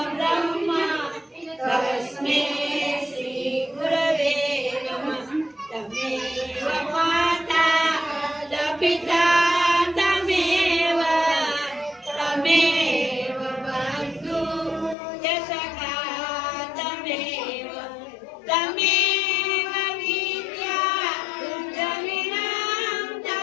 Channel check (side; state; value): right; drops out; at 15.0 s